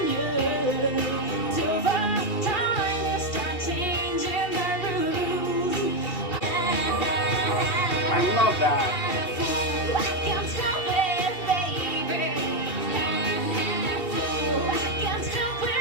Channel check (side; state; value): right; late; 2.7 ms